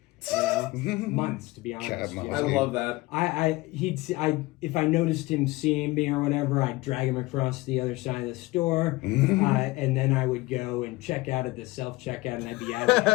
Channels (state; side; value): quieter; right; 21.1 dB